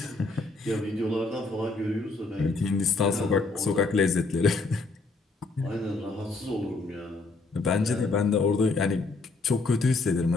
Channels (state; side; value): quieter; right; 3.6 dB